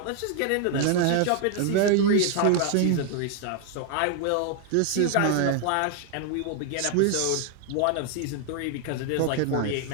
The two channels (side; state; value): both; different; correlation 0.00